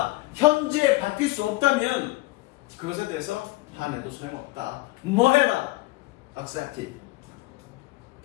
현재 바뀔 수 없다면 그것에 대해서 화내도 소용없다. 뭐 해라? accept it.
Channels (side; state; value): right; quieter; 20.9 dB